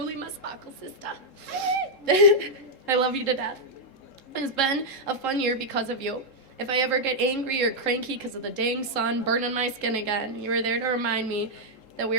my sparkle sister. I love you to death. It's been a fun year because of you. If I ever get angry or cranky because of the dang sun burning my skin again, you are there to remind me that we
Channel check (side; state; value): right; late; 3.7 ms